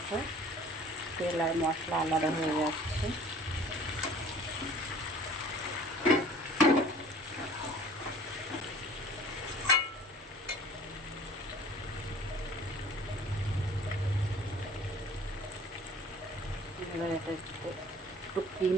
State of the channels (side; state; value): both; normal; correlation 0.48